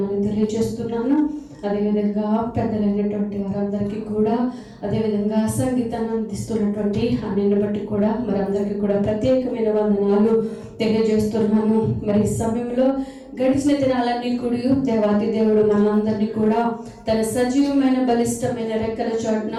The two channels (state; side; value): identical; both; correlation 1.00